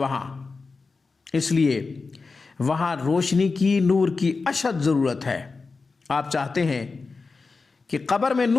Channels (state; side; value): quieter; right; 4.2 dB